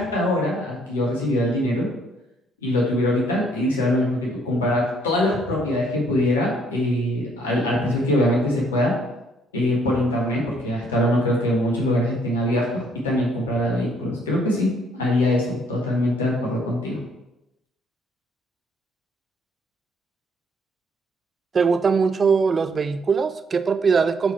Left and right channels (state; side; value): normal; both; correlation 0.66